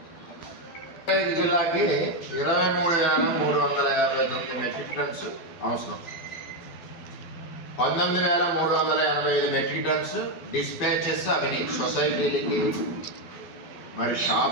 జిల్లాకి 23,359 మెట్రిక్ టన్స్ అవసరం. 19,385 మెట్రిక్ టన్స్ డిస్పాచెస్ అవన్నీ సొసైటీలకి మరి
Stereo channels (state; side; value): late; right; 12 ms